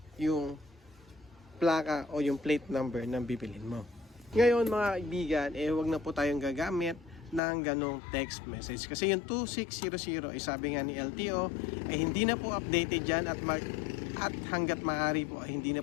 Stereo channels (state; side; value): drops out; right; at 7.4 s